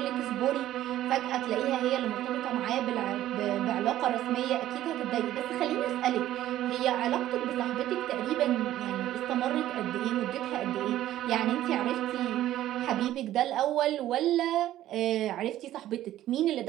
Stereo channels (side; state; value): left; quieter; 13.4 dB